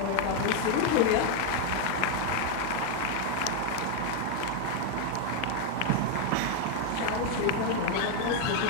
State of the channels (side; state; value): both; different; correlation 0.01